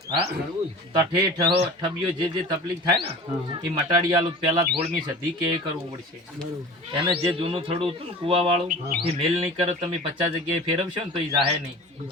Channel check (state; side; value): normal; both; correlation 0.39